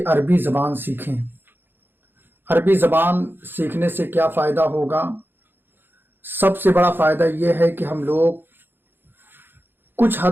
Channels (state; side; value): late; left; 0.10 ms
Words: अरबी ज़बान सीखें। अरबी ज़बान सीखने से क्या फ़ायदा होगा? सबसे बड़ा फ़ायदा ये है कि हम लोग कुछ